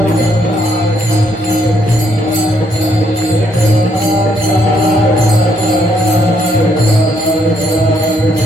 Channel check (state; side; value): normal; both; correlation 0.72